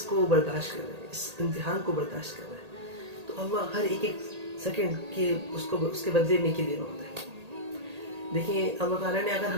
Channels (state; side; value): late; left; 1.8 ms